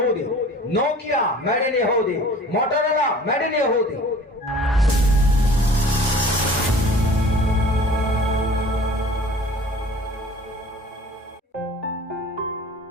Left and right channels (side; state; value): both; normal; correlation 0.46